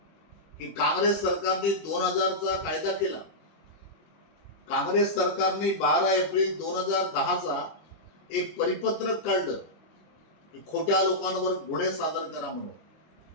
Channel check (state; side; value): late; right; 25 ms